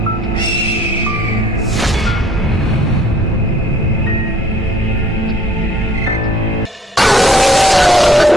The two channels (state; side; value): normal; both; correlation 0.59